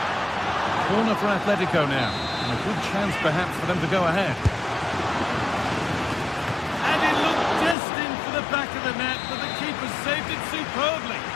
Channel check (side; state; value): right; drops out; at 7.8 s